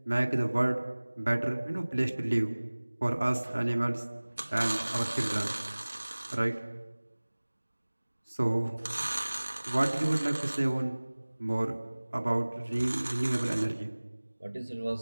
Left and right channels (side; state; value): both; inverted; correlation -1.00